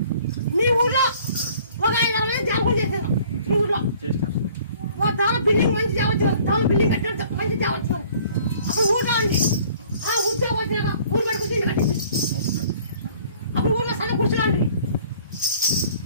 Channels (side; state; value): both; inverted; correlation -0.54